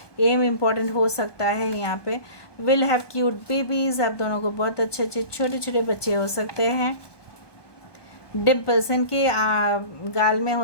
एम इम्पॉर्टेंट हो सकता है यहाँ पे। विल हैव क्यूट बेबीज़, आप दोनों को बहुत अच्छे अच्छे छोटे छोटे बच्चे हो सकते हैं। डिम्पल्स, इनके गाल में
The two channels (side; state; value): right; late; 1.2 ms